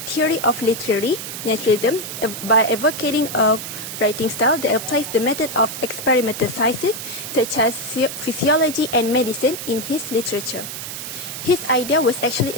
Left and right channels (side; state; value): right; noise; hiss, 8 dB below the sound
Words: theory of literary naturalism by advocating a writing style that applies the method of experimental sciences such as physiology and medicine in his literature. His idea was actually